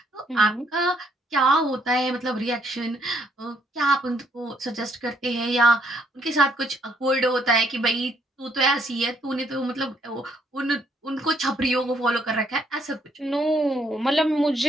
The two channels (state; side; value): normal; both; correlation 0.70